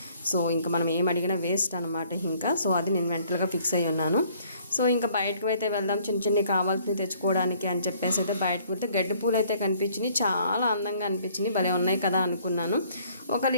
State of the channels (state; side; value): inverted; both; correlation -0.60